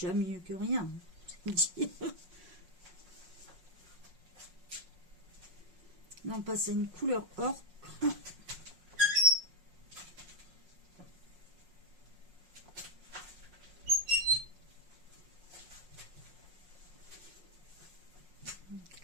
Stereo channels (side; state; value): left; late; 5.5 ms